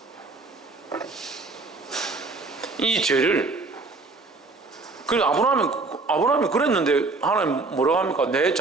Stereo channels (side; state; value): left; quieter; 3.7 dB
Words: 이 죄를 그리고 아브라함이 그랬는데 하나님 뭐라고 합니까? 내